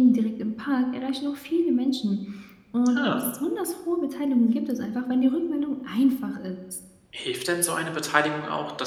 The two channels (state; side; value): identical; both; correlation 1.00